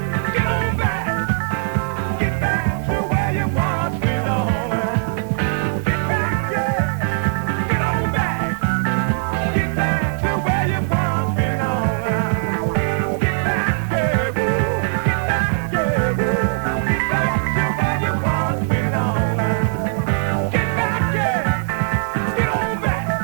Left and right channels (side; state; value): left; silent; digital silence